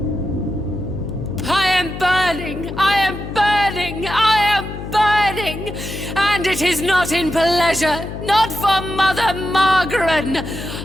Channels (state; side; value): noise; left; hum, 9 dB below the sound